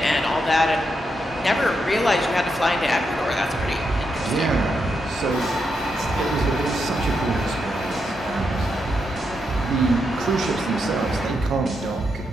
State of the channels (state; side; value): normal; both; correlation 0.83